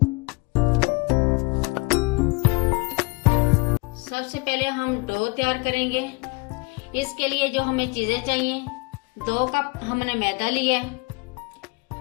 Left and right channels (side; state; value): right; quieter; 26.5 dB